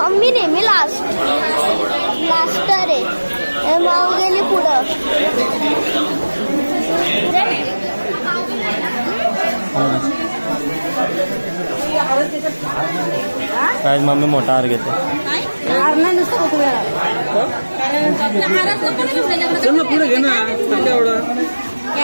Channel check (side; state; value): both; inverted; correlation -1.00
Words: नेहमी लास्टर आहे. माऊ गेली पुढं. काय मम्मी मोठा हार घेते. पुढे घे ना एवढं.